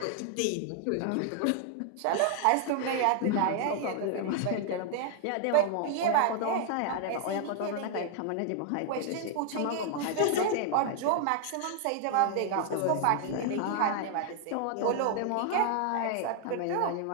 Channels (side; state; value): both; different; correlation 0.00